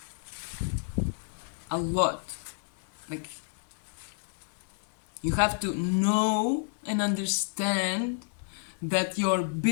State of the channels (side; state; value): right; silent; 58 dB below the other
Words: a lot. Like, you have to know and understand that your